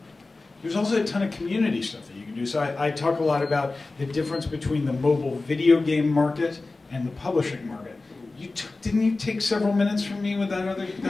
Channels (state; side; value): quieter; right; 3.4 dB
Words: There's also a ton of community stuff that you can do. So I talk a lot about the difference between the mobile video game market and the publishing market. Didn't you take several minutes from me with